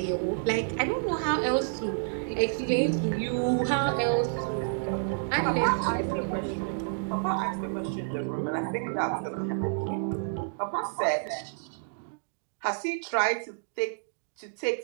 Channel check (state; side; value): silent; left; digital silence